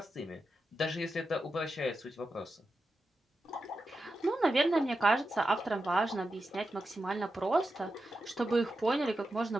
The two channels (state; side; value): normal; both; correlation 0.89